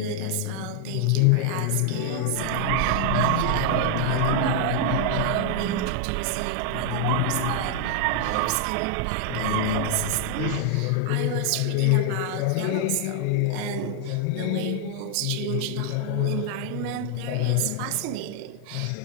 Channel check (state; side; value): different; both; correlation 0.00